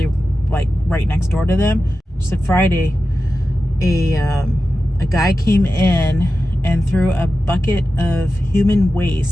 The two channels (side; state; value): both; normal; correlation 0.93